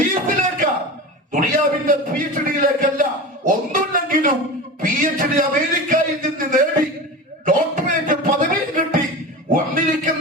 ദുനിയാവിന്റെ PhD-യിലേക്കല്ല. ഒന്നുമില്ലെങ്കിലും PhD അമേരിക്കയിൽ നിന്ന് നേടി ഡോക്ടറേറ്റ് പദവി കിട്ടി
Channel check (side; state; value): both; normal; correlation 0.29